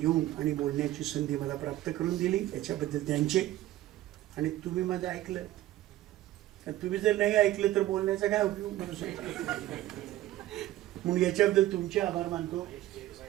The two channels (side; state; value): left; quieter; 14.9 dB